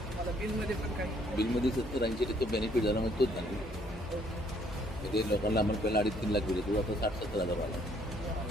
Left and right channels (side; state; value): both; normal; correlation 0.65